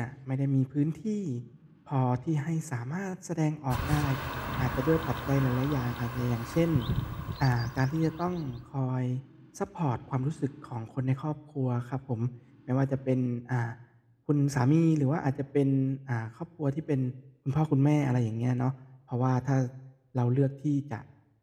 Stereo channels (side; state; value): both; identical; correlation 1.00